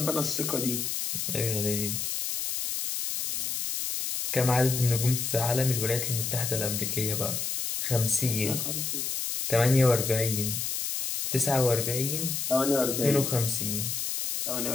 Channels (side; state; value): left; noise; hiss, 2 dB below the sound